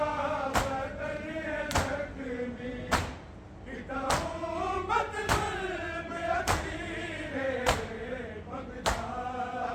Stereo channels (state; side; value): identical; both; correlation 1.00